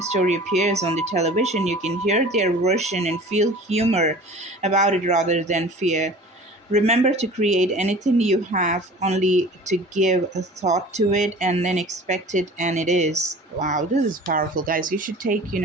appears on the television, you can hear their version and feel humor about it rather than fear. Remember to create anything you have only to give a thought to it and then expect it, and it is. Wow, this is powerful, guys. You should take,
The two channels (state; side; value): normal; both; correlation 0.43